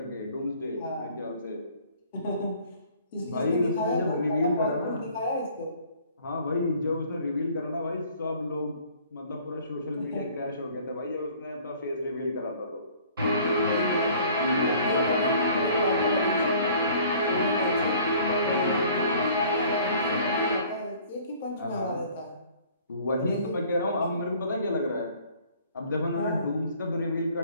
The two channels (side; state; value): both; inverted; correlation -0.54